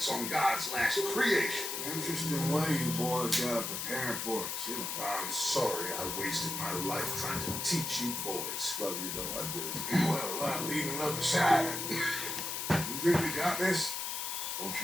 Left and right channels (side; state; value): left; noise; hiss, 3 dB below the sound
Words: on God's last creation. Interesting way you boys got preparing for it, too. I'm sorry I wasted my life trying to teach you boys. Love you though, I do. Well, leaving love aside. You think we got this? Don't